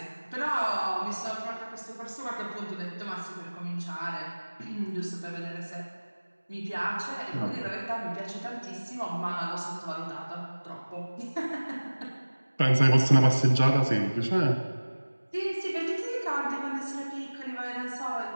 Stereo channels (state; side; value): inverted; both; correlation -1.00